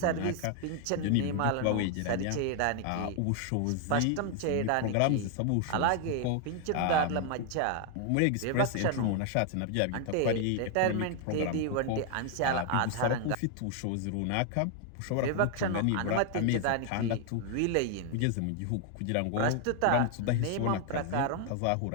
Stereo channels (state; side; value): different; both; correlation 0.00